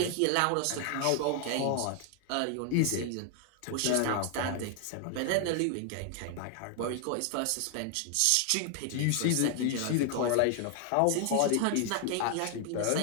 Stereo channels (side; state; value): both; different; correlation 0.00